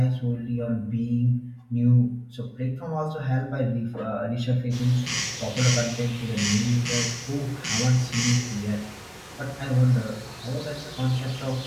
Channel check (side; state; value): both; identical; correlation 1.00